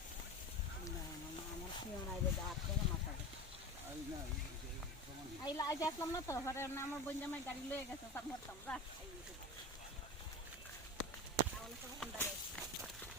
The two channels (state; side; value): normal; both; correlation 0.28